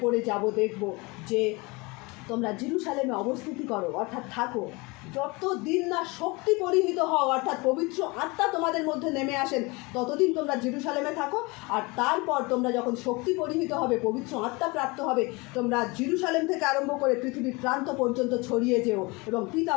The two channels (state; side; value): quieter; right; 25.9 dB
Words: পড়ে যাব দেখব, যে তোমরা জেরুজালেমে অবস্থিতি করো, অর্থাৎ থাকো, যতদিন না শক্তি পরিহিত হও, অর্থাৎ পবিত্র আত্মা তোমাদের মধ্যে নেমে আসেন, ততদিন তোমরা জেরুজালেমে থাকো। আর তারপর তোমরা যখন শক্তি পরিহিত হবে, পবিত্র আত্মা প্রাপ্ত হবে, তোমরা জেরুজালেম থেকে আরম্ভ করে পৃথিবীর প্রান্ত পর্যন্ত ছড়িয়ে যেও এবং পিতা